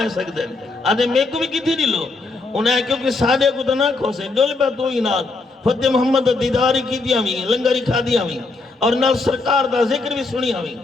سکتے ہیں آدھے میں کو بھی کتھی دی لو انہیں کیونکہ سادے کو تو نہ کھوسے ڈول پہ تو ہی ناد فتح محمد دیداری کی دیا ہوئی لنگری کھا دیا ہوئی اور نال سرکار دا ذکر بھی سنی ہوئی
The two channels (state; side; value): quieter; right; 3.6 dB